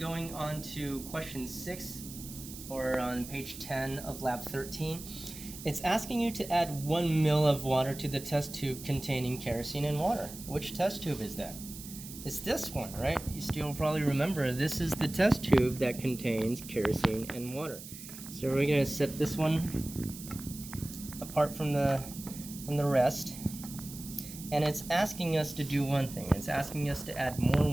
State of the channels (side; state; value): right; noise; hiss, 13 dB below the sound